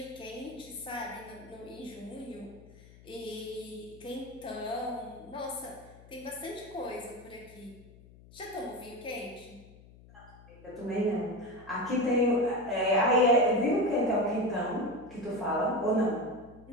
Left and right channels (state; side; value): noise; left; hum, 22 dB below the sound